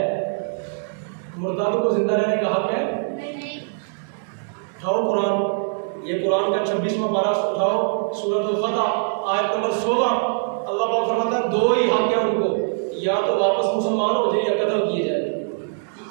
مرتد کو زندہ رہنے کا حق ہے؟ اٹھاؤ قرآن، یہ قرآن کا 26واں پارہ اٹھاؤ، سورۃ الفتح آیت نمبر 16۔ اللہ پاک فرماتا ہے دو ہی حق ہے ان کو، یا تو واپس مسلمان ہو جائے یا قتل کیے جائے،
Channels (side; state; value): left; silent; digital silence